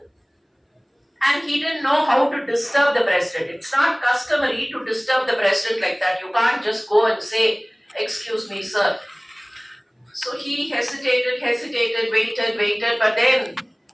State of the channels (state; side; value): identical; both; correlation 1.00